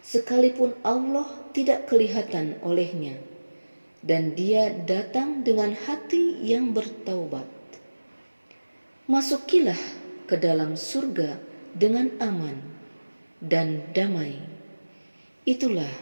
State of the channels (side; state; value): both; inverted; correlation -1.00